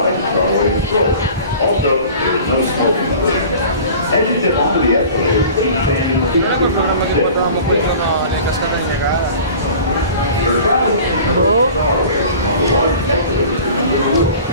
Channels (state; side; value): inverted; both; correlation -0.42